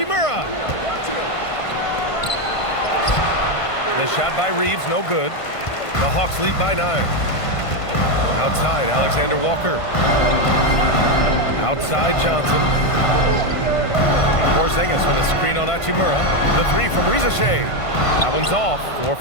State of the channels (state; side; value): late; right; 1.5 ms